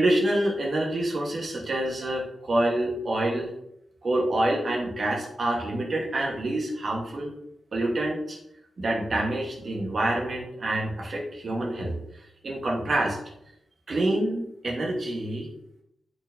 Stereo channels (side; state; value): both; normal; correlation 0.91